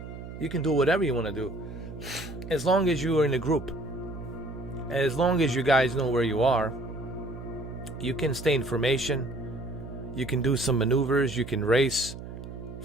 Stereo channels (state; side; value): noise; right; hum, 11 dB below the sound